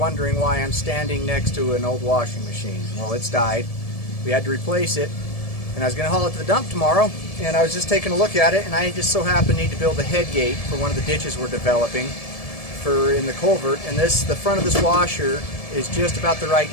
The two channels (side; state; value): right; late; 1.7 ms